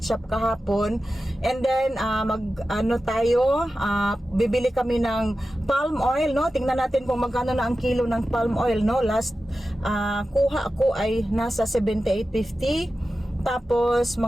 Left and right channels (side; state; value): both; normal; correlation 0.93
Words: shop kahapon. And then bibili kami ng palm oil, no. Tingnan natin kung magkano na ang kilo ng palm oil, no. Last kuha ako ay nasa 78.50. Tapos